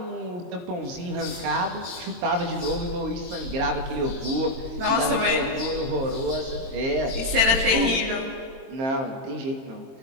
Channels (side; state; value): left; late; 22 ms